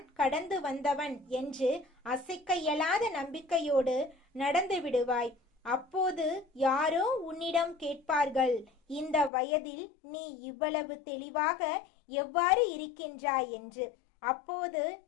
கடந்து வந்தவன் என்று அசைக்க இயலாத நம்பிக்கையோடு நடந்து விடுவாய். அப்போது யாரோ உன்னிடம் கேட்பார்கள், இந்த வயதில் நீ இவ்வளவு தெளிவாக எவ்வாறு இருக்கின்றாய் என்று. அப்போது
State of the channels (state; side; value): drops out; right; at 9.3 s